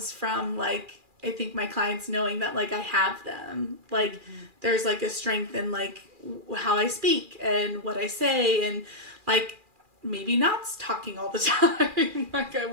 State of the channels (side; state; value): left; late; 2.4 ms